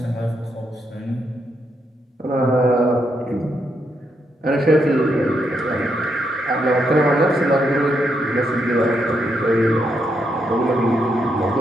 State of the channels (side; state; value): both; normal; correlation 0.79